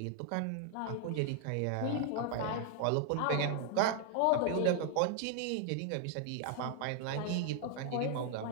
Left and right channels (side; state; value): both; different; correlation 0.00